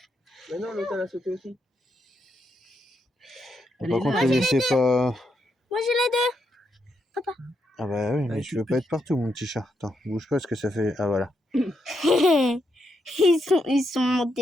Mais non, l'autre elle a sauté aussi. Par contre, ne laissez pas... Moi, j'ai les deux. Ah bah oui, mais je veux pas être partout, mon petit chat. Attends, bouge pas, parce que ça fait... Ah voilà. Ils sont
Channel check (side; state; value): both; normal; correlation 0.81